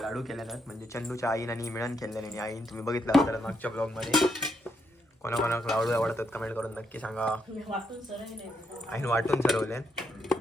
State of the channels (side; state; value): both; normal; correlation 0.78